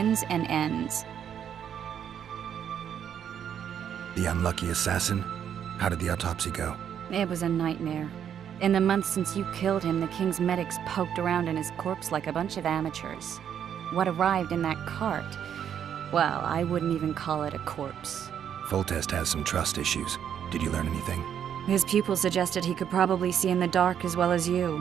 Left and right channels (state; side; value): quieter; left; 8.9 dB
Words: and ends. The unlucky assassin? How did the autopsy go? It was a nightmare. In the months since you killed him, the king's medics poked around in his corpse like a bunch of amateurs. What arrived in that cart? Well, I wouldn't even call it a corpse. Foltest has some trust issues. Did you learn anything? His pupil suggested he could probably see in the dark as well as